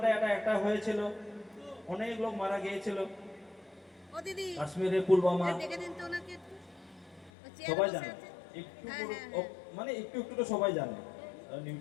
একটা হয়েছিল, অনেক লোক মারা গিয়েছিল। কাশ্মীরে পুলওয়ামা সবাই জানে, একটু একটু একটু তো সবাই জানে।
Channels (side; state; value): right; drops out; at 7.3 s